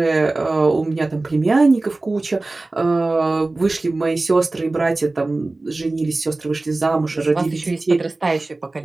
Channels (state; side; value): quieter; left; 3.1 dB